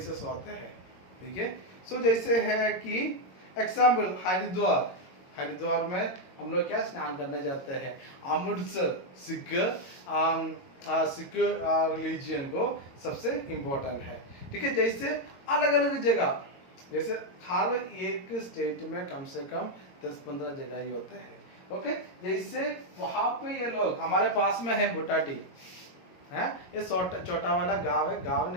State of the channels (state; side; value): late; right; 22 ms